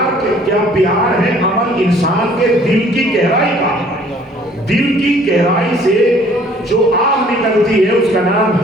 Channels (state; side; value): normal; both; correlation 0.56